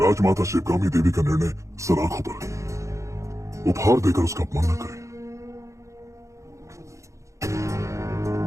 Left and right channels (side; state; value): left; late; 0.15 ms